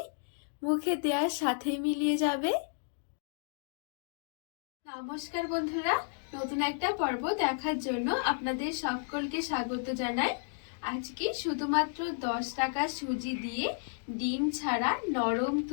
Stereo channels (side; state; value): right; silent; digital silence